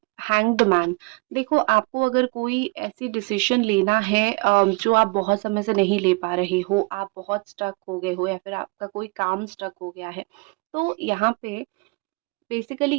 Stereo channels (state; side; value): quieter; left; 28.4 dB